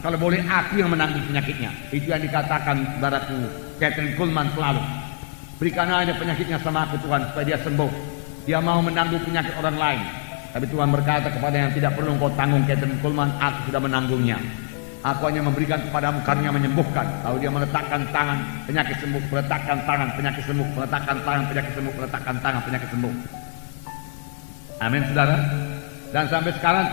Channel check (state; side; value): silent; right; digital silence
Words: Kalau boleh aku yang menanggung penyakitnya. Itu yang dikatakan saudaraku Kathryn Kuhlman selalu. Berikan aja penyakitnya sama aku Tuhan supaya dia sembuh. Dia mau menanggung penyakit orang lain. Tapi Tuhan berkata kepada yang tidak perlu engkau tanggung Kathryn Kuhlman, aku sudah menanggungnya. Aku hanya memberikan kepadamu karunia menyembuhkan. Lalu dia meletakkan tangan, penyakit sembuh, meletakkan tangan, penyakit sembuh, meletakkan tangan, penyakit sembuh, meletakkan tangan, penyakit sembuh. Amin saudara. Dan sampai sekarang